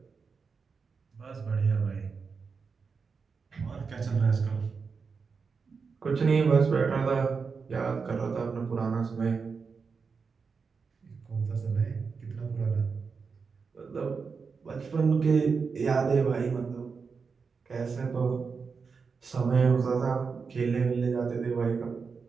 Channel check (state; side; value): quieter; left; 5.2 dB